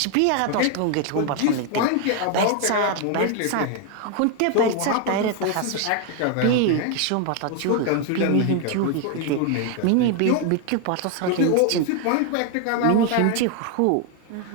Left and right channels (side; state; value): both; different; correlation 0.01